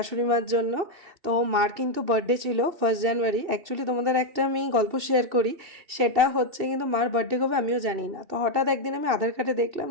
মার জন্য। তো মার কিন্তু বার্থডে ছিল 1 জানুয়ারি। অ্যাকচুয়ালি তোমাদের একটা আমি গল্প শেয়ার করি, সেটা হচ্ছে কিন্তু মার বার্থডে কবে আমিও জানি না। তো হঠাৎ একদিন আমি আধার কার্ডে দেখলাম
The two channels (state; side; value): late; left; 2.7 ms